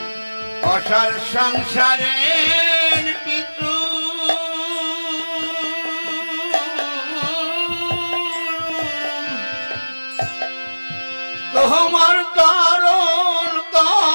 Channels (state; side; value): inverted; both; correlation -1.00